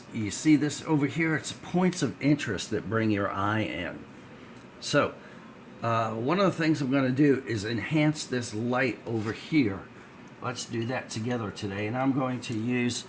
you see this over here, it's points of interest that bring your eye in. So one of the things I'm going to do is enhance this light over here. Let's do that together today, and I'm going to use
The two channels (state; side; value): identical; both; correlation 1.00